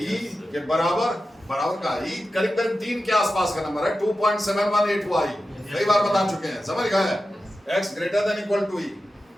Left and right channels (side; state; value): both; normal; correlation 0.92